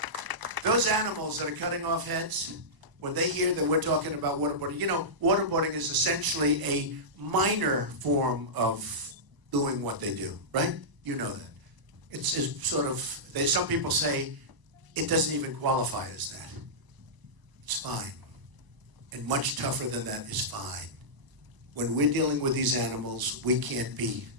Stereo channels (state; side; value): late; left; 1.0 ms